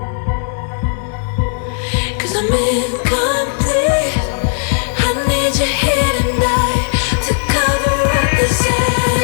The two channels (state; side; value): silent; right; digital silence